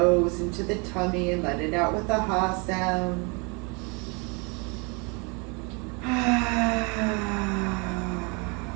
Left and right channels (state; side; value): quieter; left; 31.9 dB